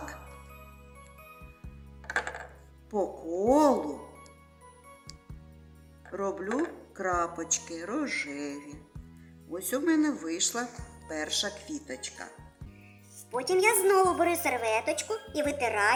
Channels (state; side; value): identical; both; correlation 1.00